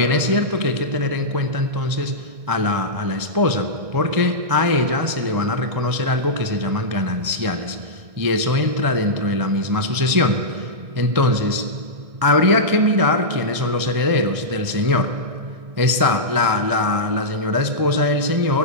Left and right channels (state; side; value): late; left; 1.6 ms